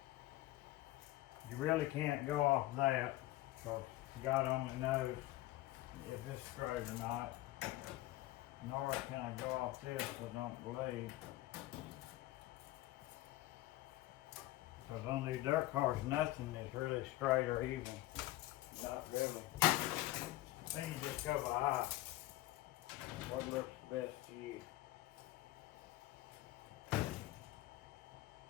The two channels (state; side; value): quieter; right; 17.1 dB